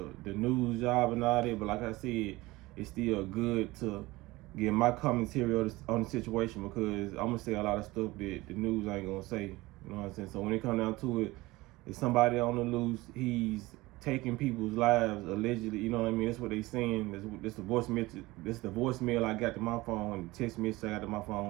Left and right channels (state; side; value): quieter; left; 20.3 dB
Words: news job and all that. But like I said, it's still good to get my commentary on the situation because I'm gonna say a lot of stuff that the news ain't gonna say. You know what I'm saying? So when it comes down to it, if somebody on the loose, he's taking people's lives allegedly. You know what I mean? That's what they saying. That's the voice message. That's the voicemail I got to my phone. The text message I got to my